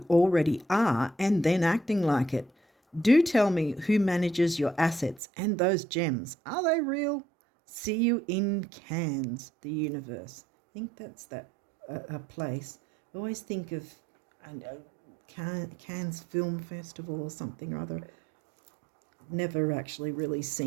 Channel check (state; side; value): drops out; left; at 5.2 s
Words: already are and then acting like it. Do tell me who manages your assets and those gems. Are they real? See you in Cannes, the universe. I think that's a place. I always think of Cannes Film Festival or something or other. Never actually really